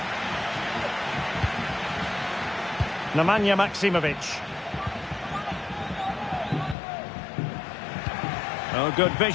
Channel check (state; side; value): drops out; right; at 6.8 s